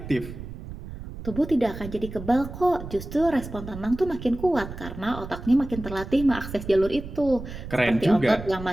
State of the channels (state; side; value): noise; right; rumble, 11 dB below the sound